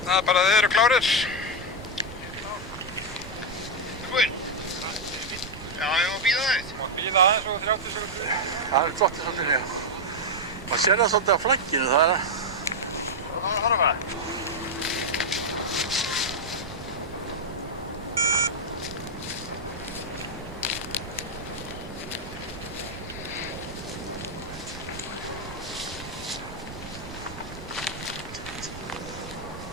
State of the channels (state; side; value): noise; right; rumble, 13 dB below the sound